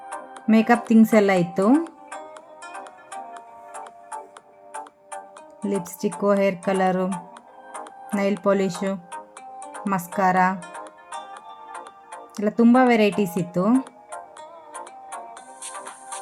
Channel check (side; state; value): both; identical; correlation 1.00